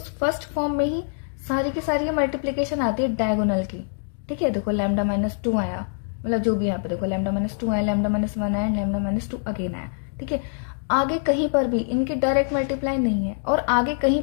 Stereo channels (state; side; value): silent; right; digital silence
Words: फर्स्ट फॉर्म में ही सारी की सारी मल्टीप्लीकेशन आती है डायगोनल की, ठीक है। देखो लैम्डा माइनस 2 आया, मतलब जो भी यहाँ पे देखो लैम्डा माइनस 2 आया, लैम्डा माइनस 1 आया, लैम्डा माइनस 2 अगेन आया, ठीक है। आगे कहीं पर भी इनकी डायरेक्ट मल्टीप्लाई नहीं है, और आगे कहीं